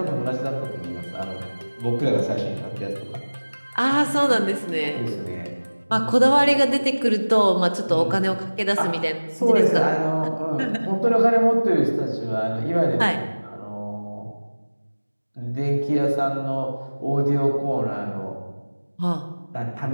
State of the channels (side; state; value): both; inverted; correlation -1.00